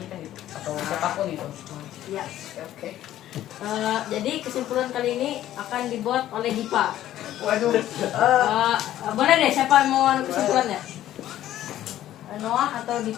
gitu, atau siapapun itu. Ya. Oke. Jadi kesimpulan kali ini akan dibuat oleh Dipa. Waduh. Boleh deh, siapa yang mau kesimpulannya? Noah atau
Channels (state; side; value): quieter; right; 12.9 dB